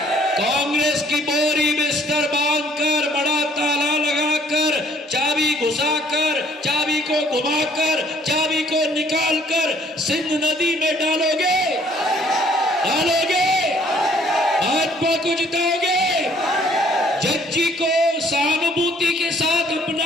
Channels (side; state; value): both; normal; correlation 0.61